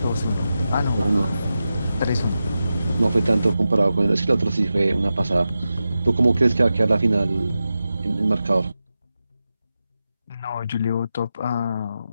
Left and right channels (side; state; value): both; inverted; correlation -0.92